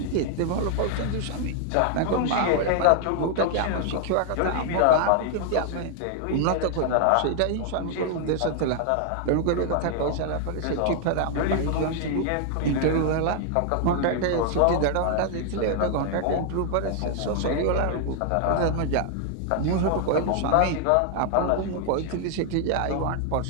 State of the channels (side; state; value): both; different; correlation 0.00